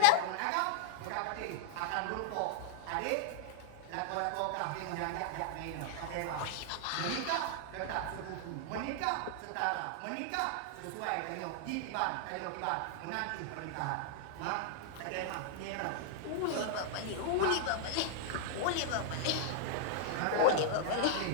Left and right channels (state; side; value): different; both; correlation 0.00